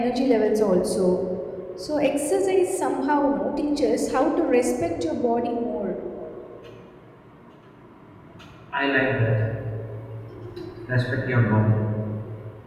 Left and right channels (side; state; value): both; identical; correlation 1.00